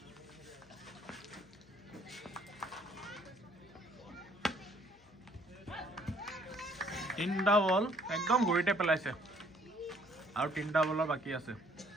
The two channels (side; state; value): left; noise; hum, 27 dB below the sound